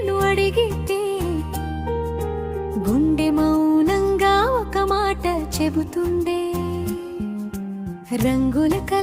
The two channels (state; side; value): identical; both; correlation 1.00